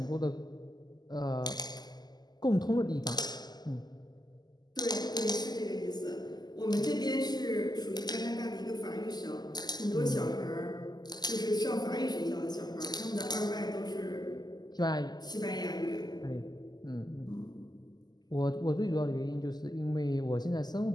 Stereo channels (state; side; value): late; right; 0.20 ms